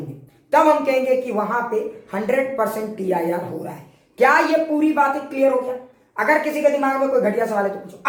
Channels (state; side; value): identical; both; correlation 1.00